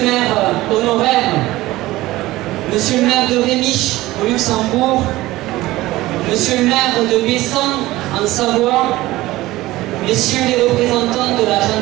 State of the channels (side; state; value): left; quieter; 17.8 dB